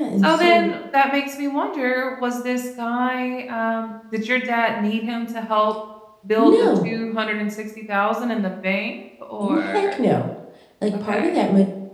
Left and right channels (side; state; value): both; identical; correlation 1.00